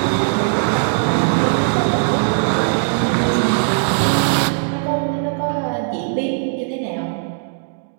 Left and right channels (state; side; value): silent; left; digital silence